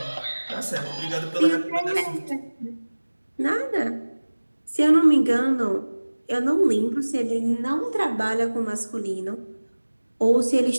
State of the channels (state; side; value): inverted; both; correlation -1.00